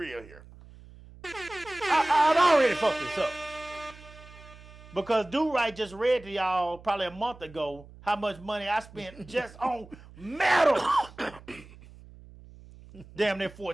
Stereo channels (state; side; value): noise; right; hum, 20 dB below the sound